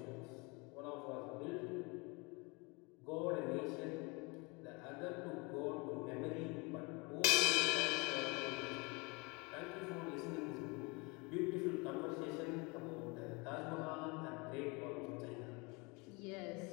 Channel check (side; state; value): right; quieter; 28.4 dB